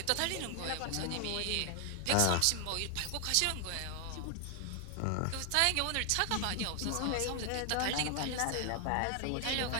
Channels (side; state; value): both; different; correlation 0.00